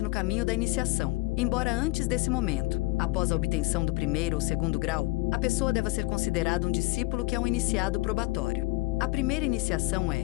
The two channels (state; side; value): quieter; right; 22.9 dB